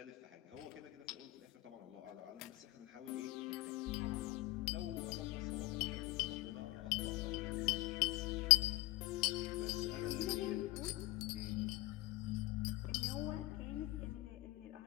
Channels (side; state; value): right; quieter; 18.9 dB